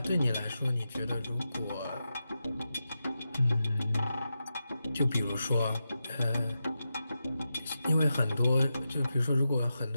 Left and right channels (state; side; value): inverted; both; correlation -0.89